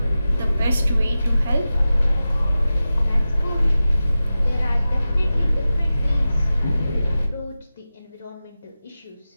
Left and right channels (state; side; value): inverted; both; correlation -0.94